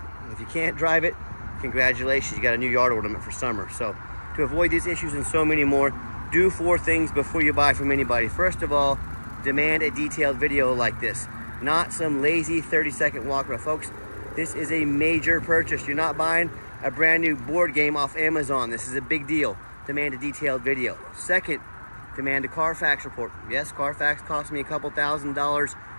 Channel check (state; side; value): inverted; both; correlation -1.00